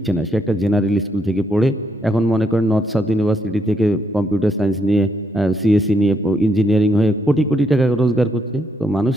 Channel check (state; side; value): normal; both; correlation 0.75